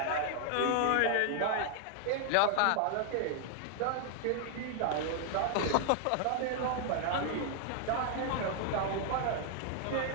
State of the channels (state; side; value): different; both; correlation 0.00